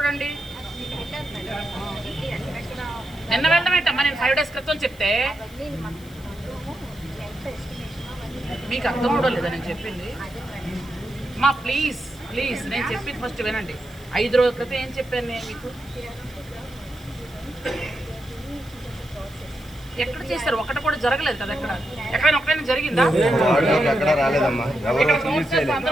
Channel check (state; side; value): noise; left; hiss, 23 dB below the sound